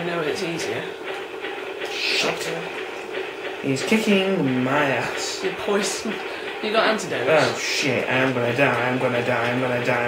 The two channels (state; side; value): identical; both; correlation 1.00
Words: know it's easier. Shit. He's kicking my ass. You're poisoned. You got antidotes. Oh shit, I'm gonna die. Don't